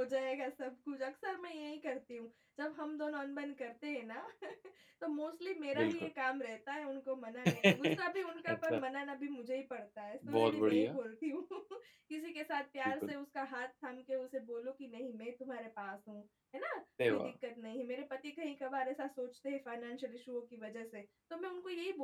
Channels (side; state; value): both; identical; correlation 1.00